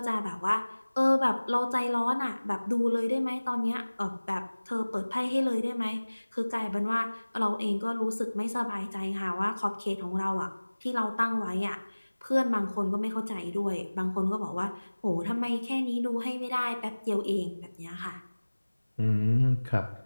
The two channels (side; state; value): both; inverted; correlation -1.00